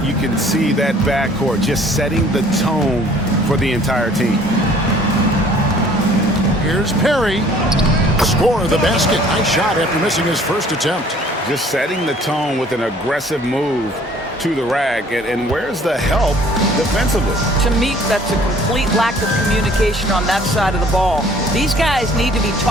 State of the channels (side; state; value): both; normal; correlation 0.55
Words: you can see that backcourt just setting the tone for the entire team. Here's Perry. Score of the basket. Nice shot after missing his first attempt. Just setting the tone with an aggressive move to the rack. And where's the help defensively? To me, that's a complete lack of communication on that side of the ball. These guys need to be